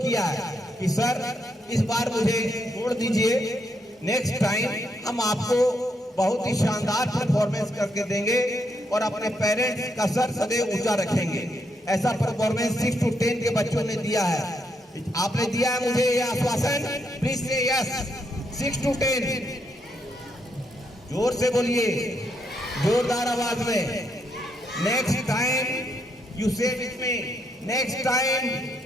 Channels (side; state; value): both; normal; correlation 0.78